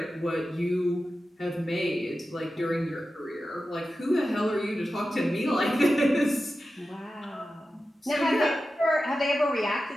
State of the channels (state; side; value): normal; both; correlation 0.93